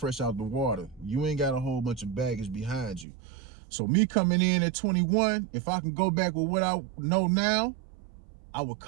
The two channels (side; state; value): left; drops out; at 3.1 s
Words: out the water. You ain't got a whole bunch of baggage behind you. So me coming in at 21, if I can go back with what I know now, I would